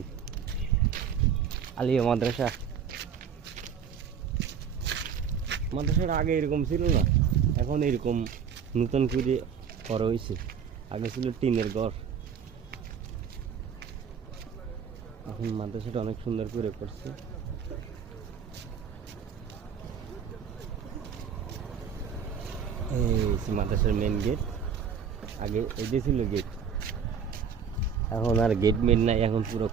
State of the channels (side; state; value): left; quieter; 7.2 dB